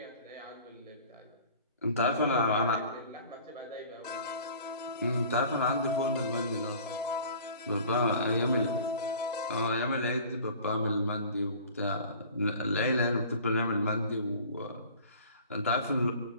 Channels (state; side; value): inverted; both; correlation -0.46